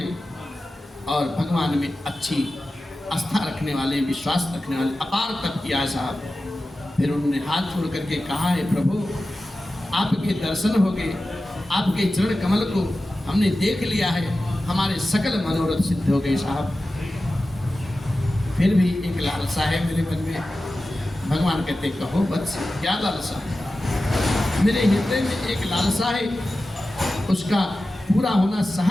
और भगवान में अच्छी आस्था रखने वाले, विश्वास रखने वाले, अपार तप किया साहब। फिर उन्होंने हाथ छोड़ करके कहा है, प्रभु आपके दर्शन हो गए, आपके चरण कमल को हमने देख लिया है, हमारे सकल मनोरथ सिद्ध हो गए साहब। फिर भी एक लालसा है मेरे मन में। भगवान कहते कहो वत्स, क्या लालसा है? मेरे हृदय में एक लालसा है, उसका पूरा होना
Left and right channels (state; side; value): normal; both; correlation 0.94